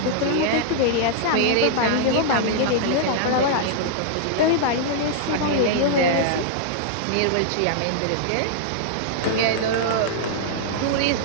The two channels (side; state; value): both; different; correlation -0.01